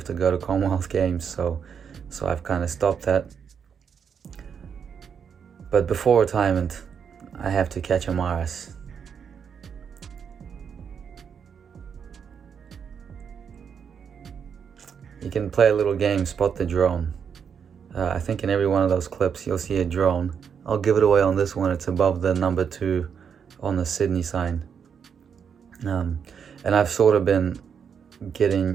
to go to Commonwealth Games, so I've kind of stopped that. But before retirement, I have to catch a Maras. You can play a little game, spot the drone. I think in every one of those clips you'll see a drone. I'll give it away on this one. It's above the number 2 on the Sydney sign. And I've sort of been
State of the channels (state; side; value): quieter; left; 7.1 dB